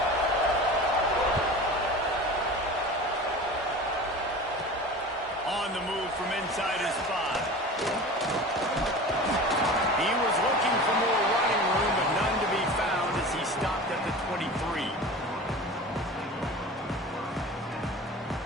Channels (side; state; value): both; normal; correlation 0.35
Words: On the move from inside his 5. He was looking for more running room, but none to be found as he stopped at the 23.